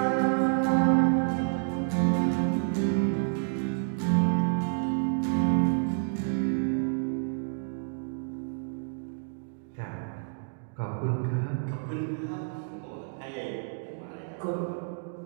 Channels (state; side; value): silent; left; digital silence